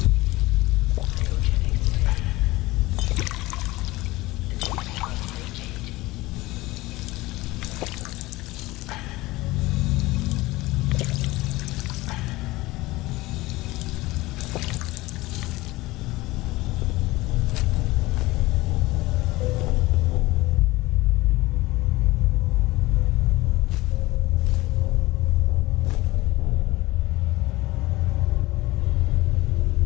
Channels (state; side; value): quieter; right; 19.8 dB